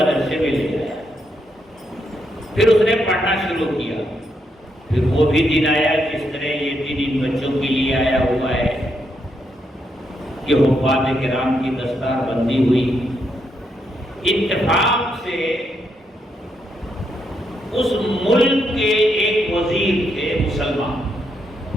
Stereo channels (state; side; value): normal; both; correlation 0.79